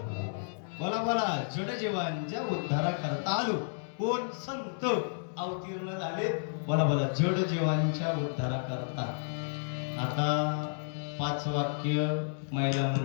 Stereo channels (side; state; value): right; silent; digital silence